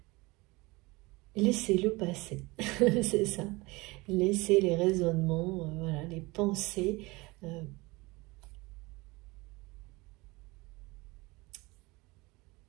Laissez-le passer, c'est ça. Laissez les raisonnements, voilà, les pensées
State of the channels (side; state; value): left; quieter; 23.5 dB